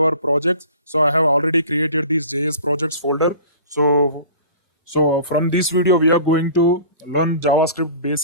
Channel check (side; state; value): both; inverted; correlation -0.43